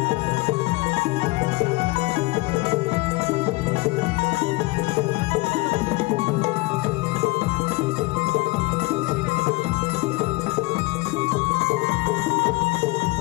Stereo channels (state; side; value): quieter; right; 23.4 dB